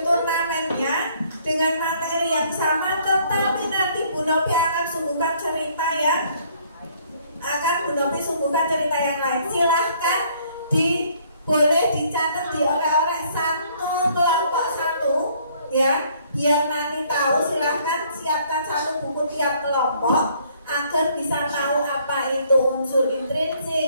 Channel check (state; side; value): inverted; both; correlation -0.63